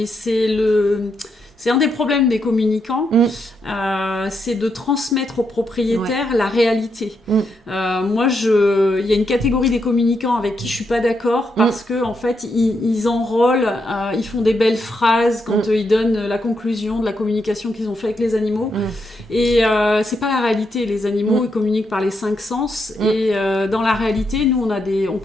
c'est un des problèmes des communicants, c'est de transmettre aux propriétaires la réalité. Moi, il y a une catégorie des communicants avec qui je suis pas d'accord parce que en fait, ils enrôlent, ils font des belles phrases quand ils donnent la conclusion de la communication qu'ils ont fait avec les animaux. Et c'est pas la réalité. Les animaux, ils communiquent par les 5 sens. Et dans la réalité, nous, on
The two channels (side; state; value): both; normal; correlation 0.81